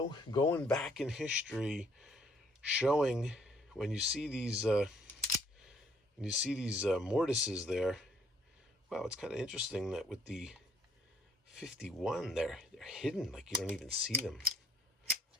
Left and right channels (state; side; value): normal; both; correlation 0.64